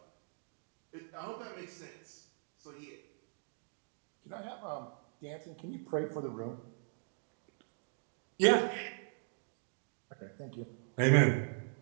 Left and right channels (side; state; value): left; silent; digital silence